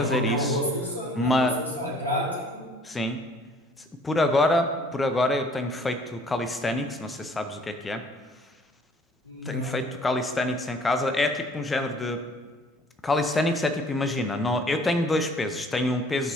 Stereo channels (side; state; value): both; normal; correlation 0.55